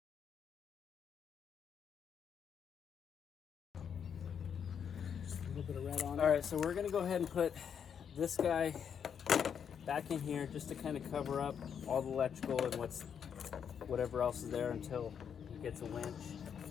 Just a little bit of red on it. All right, so we're gonna go ahead and put this guy back in here just to kind of cover up all the electrical and whatever else is there until he gets a winch.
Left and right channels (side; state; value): right; quieter; 7.7 dB